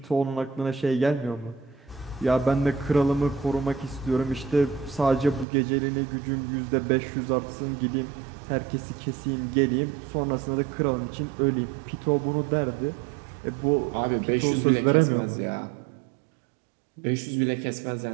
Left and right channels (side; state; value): left; drops out; at 5.5 s